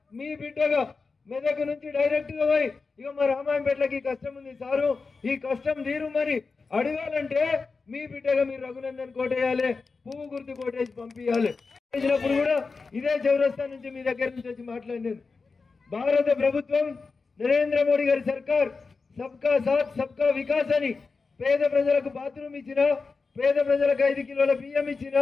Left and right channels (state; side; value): quieter; right; 4.4 dB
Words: మీ బిడ్డగా మెదక్ నుంచి డైరెక్ట్ గా పోయి ఇక మా రామాయంపేటలకి కష్టం ఉంది సారు, ఈ కష్టం తీరు మరి అడగాలంటే మీ బిడ్డగా మీరు రఘునందన్ కోటేయాలి, పువ్వు గుర్తు కోటేసి పంపించాలి. చేసినప్పుడు కూడా ఇదే చౌరస్తా నుంచి మీ దగ్గర నుంచి వచ్చి మాట్లాడినాను. భారత ప్రభుత్వం నరేంద్ర మోడీ గారి సర్కార్ సబ్కా సాత్ సబ్కా వికాస్ అని పేద ప్రజలకు బాత్రూమ్ ఇచ్చిన, పేద ప్రజలకు 5 కిలోల బియ్యం ఇచ్చిన,